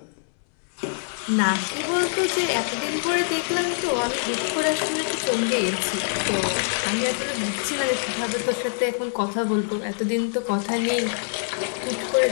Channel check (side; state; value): right; silent; 62 dB below the other